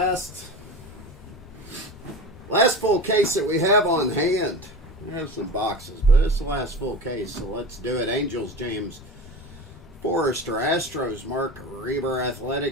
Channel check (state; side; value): normal; both; correlation 0.30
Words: full case that we have on hand. We have some boxes, but it's the last full case, so let's do it. Angels, James Forrester. Astros, Mark Reber.